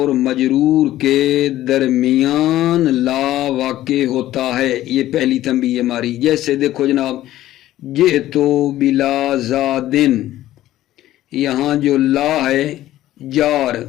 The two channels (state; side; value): quieter; right; 14.3 dB